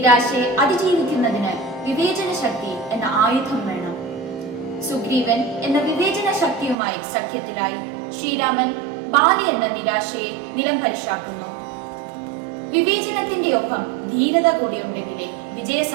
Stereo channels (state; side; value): drops out; left; at 6.8 s